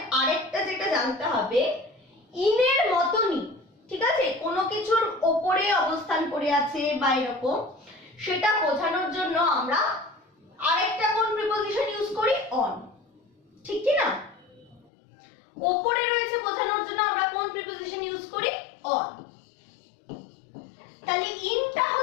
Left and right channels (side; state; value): right; drops out; at 14.9 s